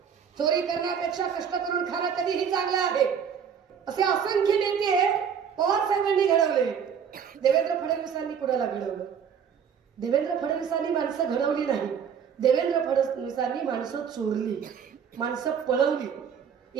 चोरी करण्यापेक्षा कष्ट करून खाणं कधीही चांगलं आहे. असे असंख्य नेते पवार साहेबांनी घडवले. देवेंद्र फडणवीसांनी कुणाला घडवलं? देवेंद्र फडणवीसांनी माणसं घडवली नाही, देवेंद्र फडणवीसांनी माणसं चोरली, माणसं पळवली.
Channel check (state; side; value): quieter; left; 7.4 dB